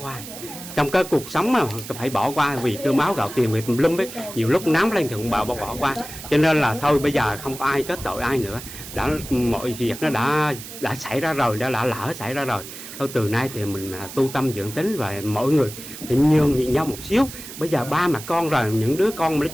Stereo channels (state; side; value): noise; right; hiss, 12 dB below the sound